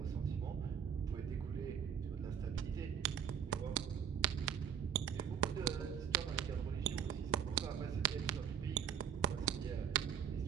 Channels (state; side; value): quieter; left; 8.0 dB